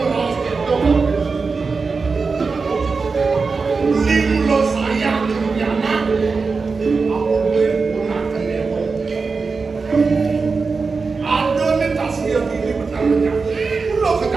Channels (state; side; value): quieter; left; 4.5 dB